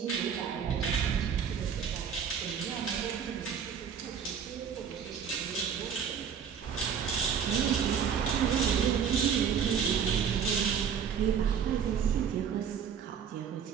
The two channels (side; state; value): left; quieter; 7.5 dB